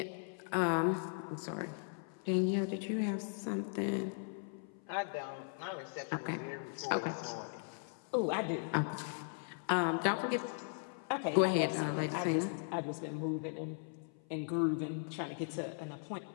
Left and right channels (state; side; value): silent; right; 52 dB below the other